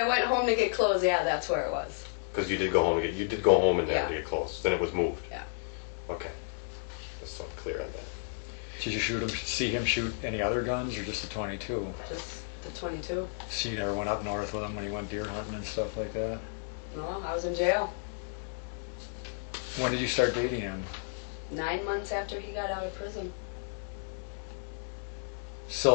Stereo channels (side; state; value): right; silent; 56 dB below the other